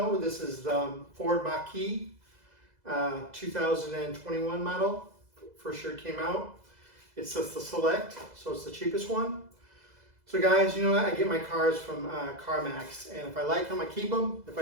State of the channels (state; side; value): late; left; 2.0 ms